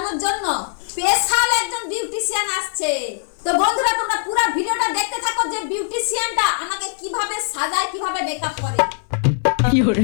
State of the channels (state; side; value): silent; right; 59 dB below the other